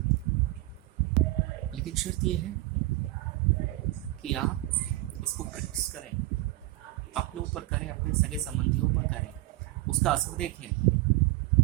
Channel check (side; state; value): left; quieter; 18.0 dB